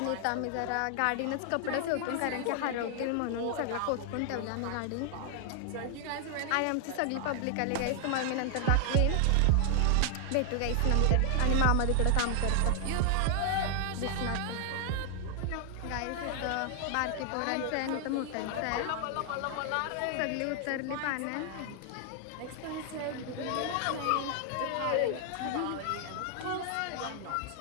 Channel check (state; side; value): different; both; correlation 0.00